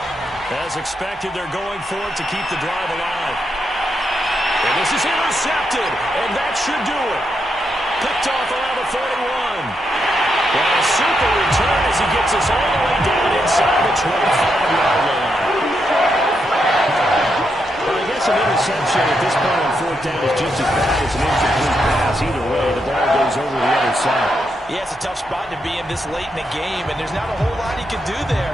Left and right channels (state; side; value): normal; both; correlation 0.82